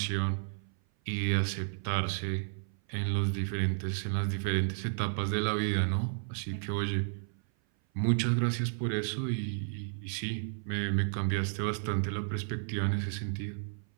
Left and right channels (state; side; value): silent; left; 56 dB below the other